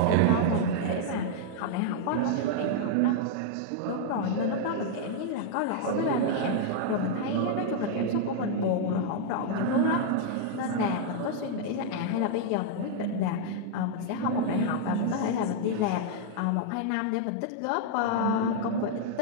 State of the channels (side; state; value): both; different; correlation -0.01